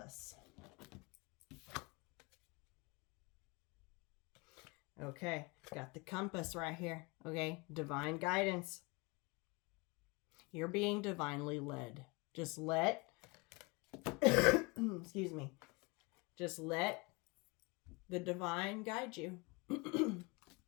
Okay, got the compass right here. Okay, divine guidance. You're being divinely led. Just let, excuse me, just let the divine guide you.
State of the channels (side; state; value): right; quieter; 27.0 dB